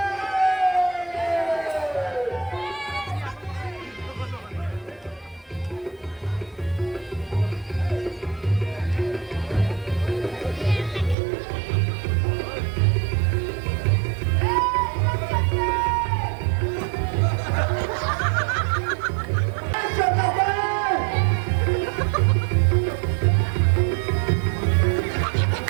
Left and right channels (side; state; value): left; drops out; at 11.2 s